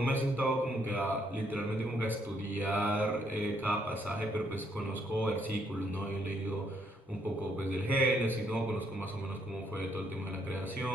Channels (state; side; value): normal; both; correlation 0.72